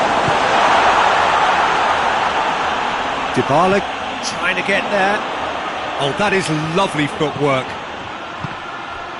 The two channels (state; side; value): identical; both; correlation 1.00